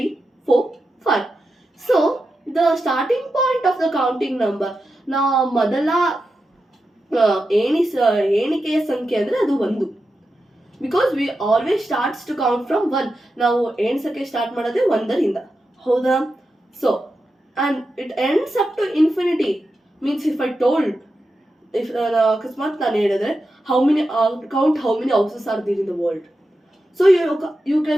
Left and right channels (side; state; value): both; normal; correlation 0.89